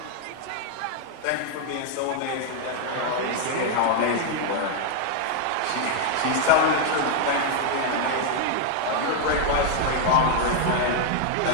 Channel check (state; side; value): different; both; correlation 0.00